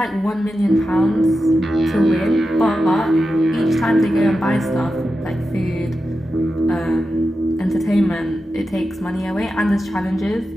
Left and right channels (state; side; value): normal; both; correlation 0.90